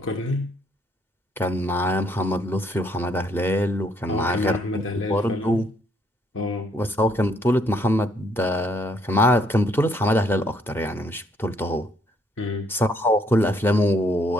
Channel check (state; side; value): normal; both; correlation 0.69